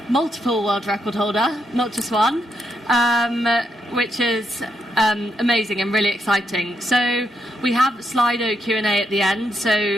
multiple world record holder, not just one, which is amazing and really exciting. So we have Slido Q&A at the end,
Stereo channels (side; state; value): both; normal; correlation 0.79